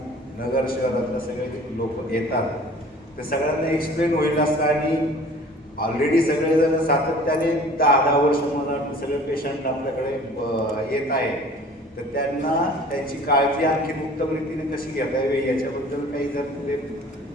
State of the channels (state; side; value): normal; both; correlation 0.47